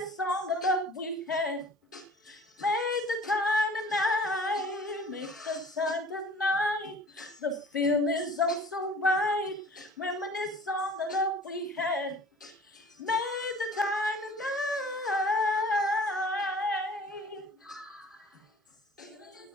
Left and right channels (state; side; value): normal; both; correlation 0.46